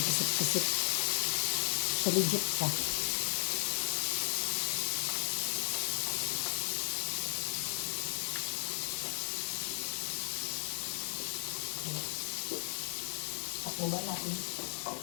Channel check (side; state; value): right; silent; digital silence